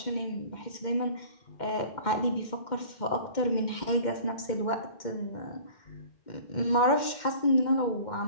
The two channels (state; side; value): late; right; 2.1 ms